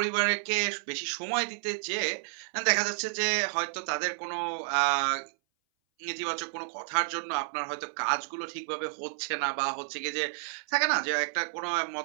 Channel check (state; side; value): silent; left; 57 dB below the other